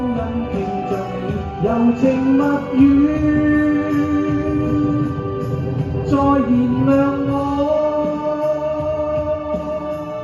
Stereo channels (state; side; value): identical; both; correlation 1.00